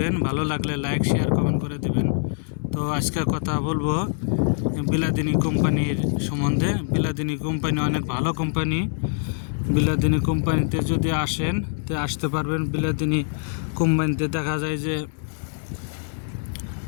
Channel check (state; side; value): silent; right; 62 dB below the other